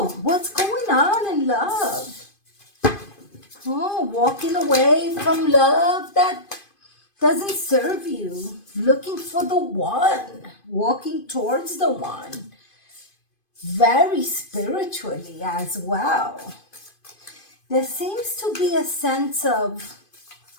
what's going on in love? Oh, walking away from love that doesn't serve you, looking for the one, walking towards the one, very spiritually as well. There seems to be a sense of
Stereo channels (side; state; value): right; late; 2.5 ms